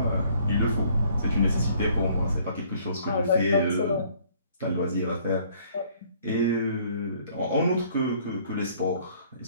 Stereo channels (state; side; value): inverted; both; correlation -0.60